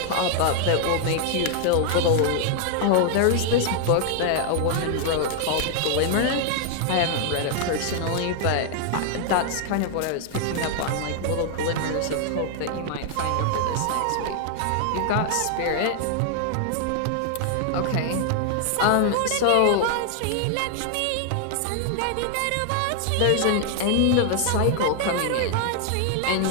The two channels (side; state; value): both; different; correlation 0.00